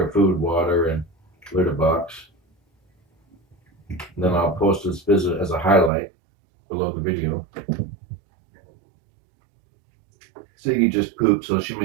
of food, water, and litter box. And then I'll post this visit as a highlight below the video. Ziggy just pooped, so she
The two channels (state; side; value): drops out; left; at 5.9 s